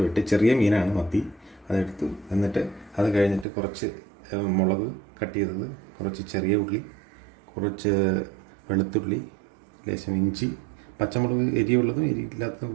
വെട്ടി, ചെറിയ മീനാണ് മത്തി, അതെടുത്തു. എന്നിട്ട് അത് കഴിഞ്ഞിട്ട് കുറച്ച് മുളക് കട്ട് ചെയ്തത്, കുറച്ച് ചെറിയ ഉള്ളി, കുറച്ച് വെളുത്തുള്ളി, ലേശം ഇഞ്ചി, പച്ചമുളക് എരിയുള്ളതും എരിയില്ലാത്തതും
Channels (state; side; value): drops out; left; at 3.5 s